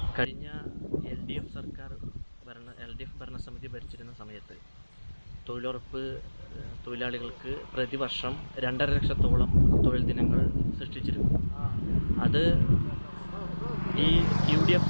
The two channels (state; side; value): inverted; both; correlation -1.00